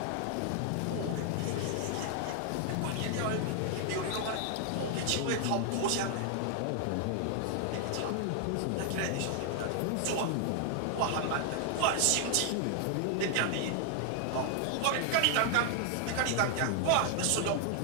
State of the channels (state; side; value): different; both; correlation 0.00